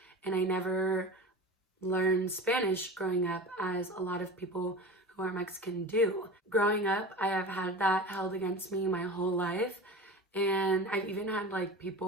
and I never learned Spanish growing up, as a lot of people who are Mexican do. Growing up, I have had that held against me my whole life, and I've even had like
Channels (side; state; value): both; normal; correlation 0.32